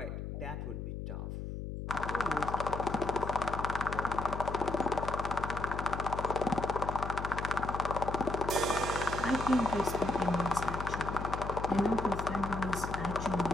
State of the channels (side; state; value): left; noise; hum, 6 dB below the sound